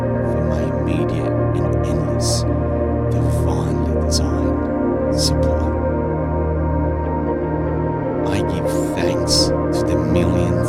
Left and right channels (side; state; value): both; identical; correlation 1.00